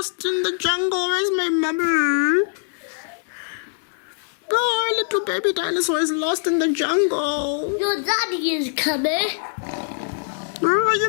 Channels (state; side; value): silent; right; digital silence